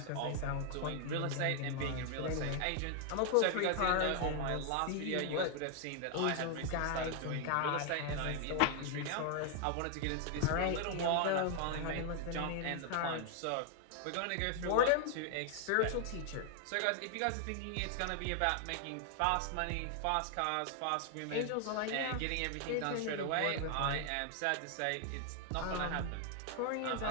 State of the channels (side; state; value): both; different; correlation 0.00